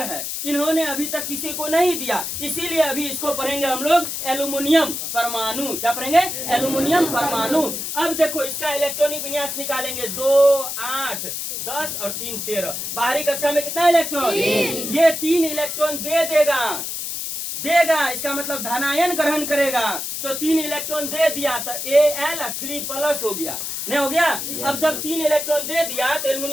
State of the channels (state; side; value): noise; left; hiss, 4 dB below the sound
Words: है। इन्होंने अभी तक किसी को नहीं दिया, इसीलिए अभी इसको पढ़ेंगे हम लोग एल्यूमिनियम परमाणु। क्या पढ़ेंगे? एल्यूमिनियम परमाणु। अब देखो इसका इलेक्ट्रॉनिक विन्यास निकालेंगे। 2, 8, 10 और 3, 13। बाहरी कक्षा में कितना इलेक्ट्रॉन? ये 3 इलेक्ट्रॉन दे देगा। इसका मतलब धनायन ग्रहण करेगा। तो 3 इलेक्ट्रॉन दे दिया तो Al3+ हो गया। नहीं हो गया? अब जब 3 इलेक्ट्रॉन दे दिया तो